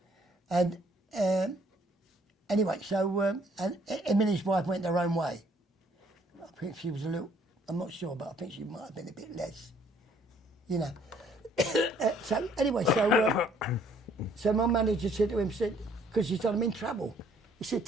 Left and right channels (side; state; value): both; normal; correlation 0.63